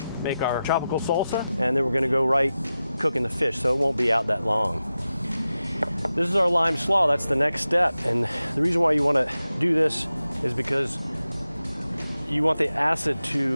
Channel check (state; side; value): inverted; both; correlation -0.93